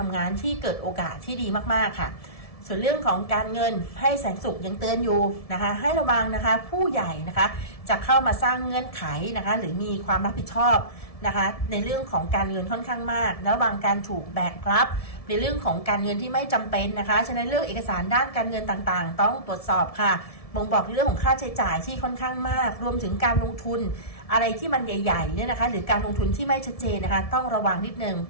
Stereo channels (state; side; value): late; right; 1.7 ms